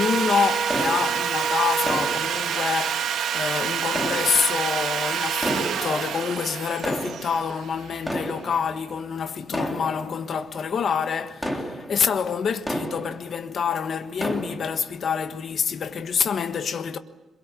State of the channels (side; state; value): both; normal; correlation 0.73